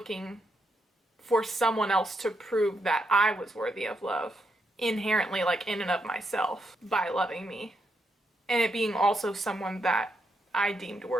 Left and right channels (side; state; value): both; normal; correlation 0.80